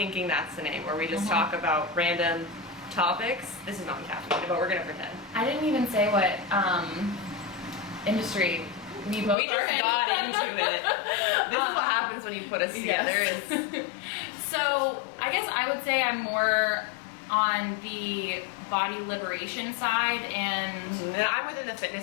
that's the name, where we just talk about random topics. This is not caffeine, but we're gonna pretend. I didn't even say what industry we both just got into it. This is what happens when you put us together. So I guess I would say I'm more on the body liberation side, and I'm within the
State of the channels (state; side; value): drops out; right; at 9.3 s